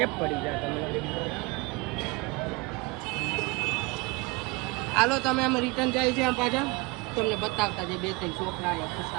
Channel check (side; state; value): left; quieter; 24.7 dB